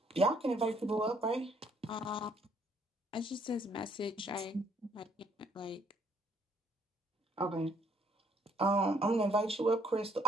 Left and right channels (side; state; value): both; normal; correlation 0.66